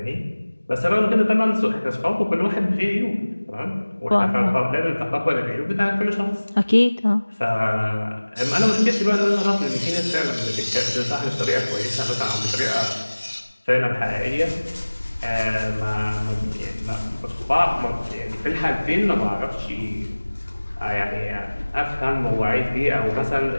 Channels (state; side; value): inverted; both; correlation -1.00